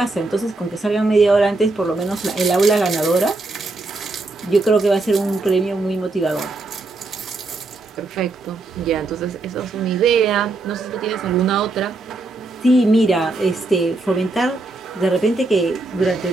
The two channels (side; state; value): left; quieter; 3.2 dB